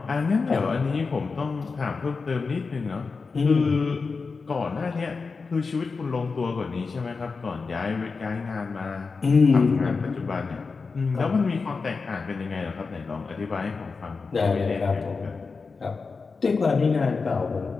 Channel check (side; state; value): right; quieter; 4.6 dB